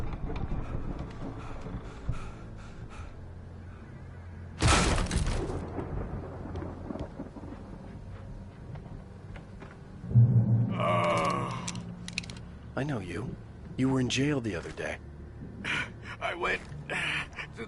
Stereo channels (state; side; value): identical; both; correlation 1.00